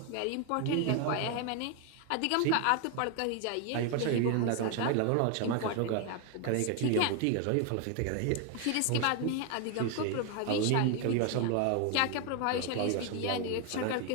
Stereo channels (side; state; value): both; different; correlation 0.01